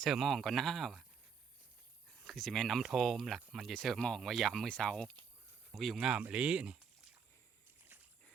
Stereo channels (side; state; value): left; quieter; 6.5 dB